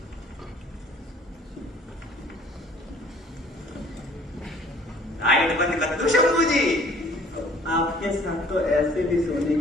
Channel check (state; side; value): normal; both; correlation 0.55